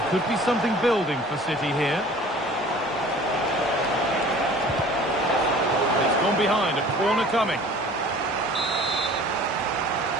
could be something building for City here. It's gone behind, a corner coming.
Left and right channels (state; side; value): normal; both; correlation 0.47